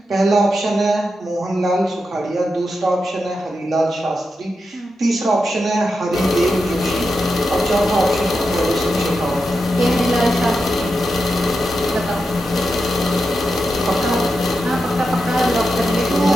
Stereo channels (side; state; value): both; normal; correlation 0.88